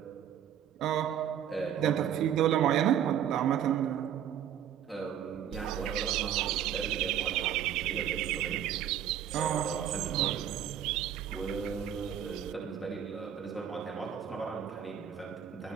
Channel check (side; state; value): left; quieter; 9.6 dB